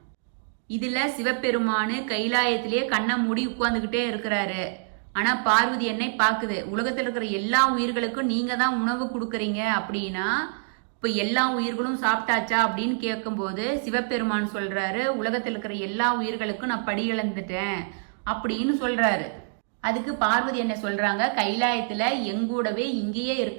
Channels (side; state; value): left; silent; digital silence